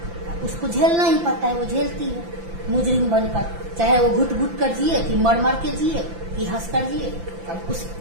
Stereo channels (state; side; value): late; left; 5.9 ms